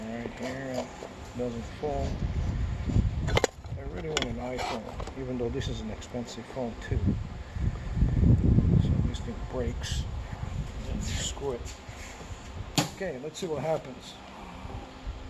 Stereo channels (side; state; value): both; identical; correlation 1.00